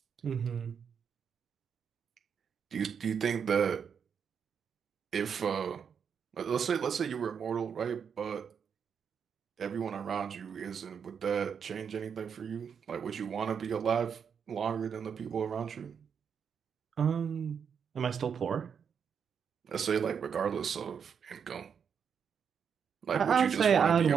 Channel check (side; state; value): left; quieter; 7.0 dB